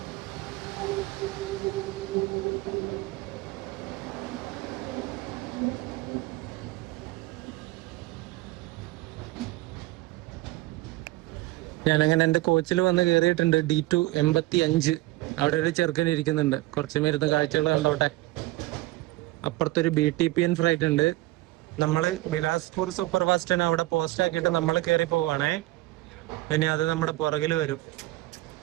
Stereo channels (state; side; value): quieter; left; 18.8 dB